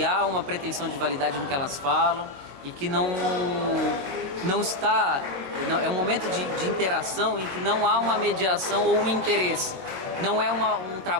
há uma pretensão de validade no que elas falam e que não está... É um momento de interação em que não há uma mediação ou um interesse. Não é um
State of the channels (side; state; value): left; late; 22 ms